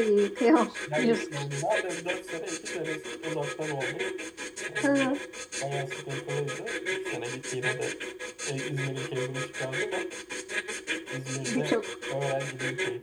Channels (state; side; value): identical; both; correlation 1.00